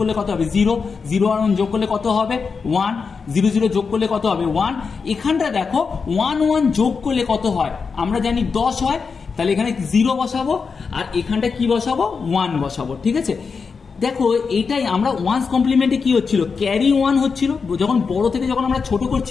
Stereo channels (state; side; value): quieter; right; 5.2 dB